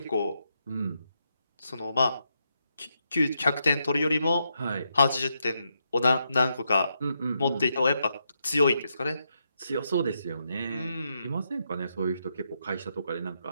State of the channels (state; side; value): inverted; both; correlation -0.82